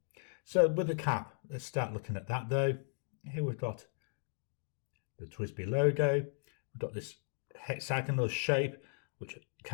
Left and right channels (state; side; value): silent; right; digital silence